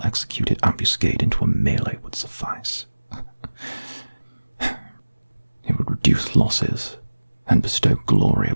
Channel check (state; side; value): inverted; both; correlation -1.00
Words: ambuscade into a melee would suffice. It would reduce losses and bestow glory